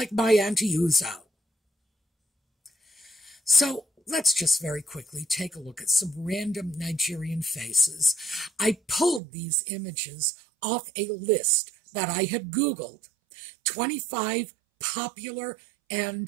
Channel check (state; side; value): drops out; left; at 9.2 s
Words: my Auntie Uzo. So, let's just very quickly take a look at some random Nigerian faces. I pulled these images off a list that I had Googled. 25 popular